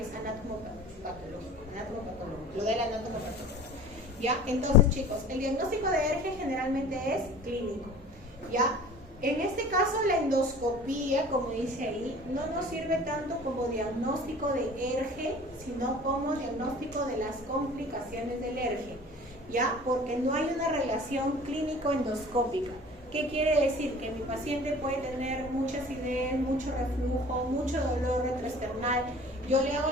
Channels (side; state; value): both; normal; correlation 0.44